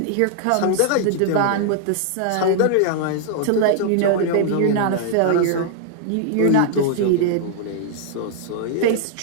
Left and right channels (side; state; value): both; different; correlation -0.01